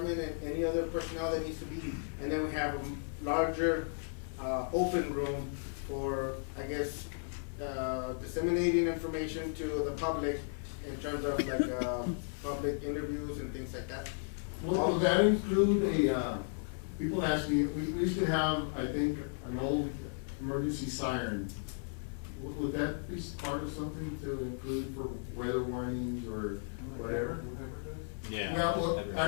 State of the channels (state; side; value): silent; right; digital silence